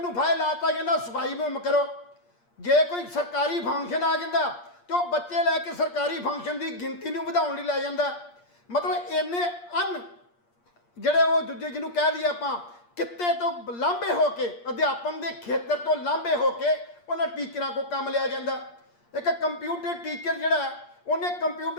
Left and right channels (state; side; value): late; right; 8.5 ms